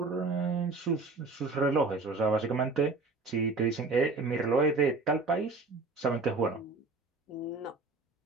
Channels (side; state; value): left; quieter; 3.8 dB